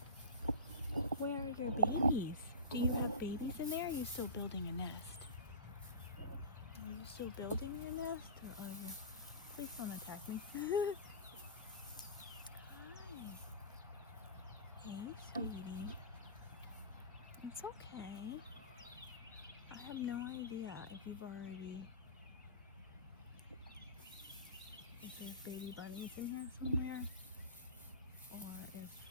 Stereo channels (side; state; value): both; inverted; correlation -0.32